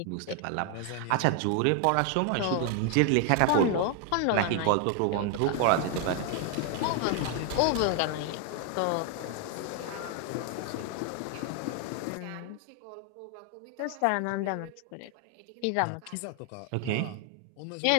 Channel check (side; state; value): both; different; correlation 0.00